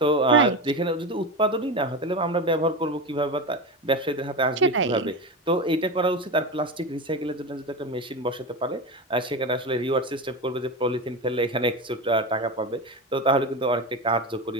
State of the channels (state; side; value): normal; both; correlation 0.21